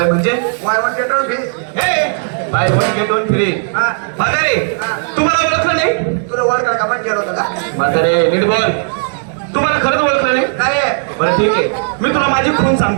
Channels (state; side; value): silent; left; digital silence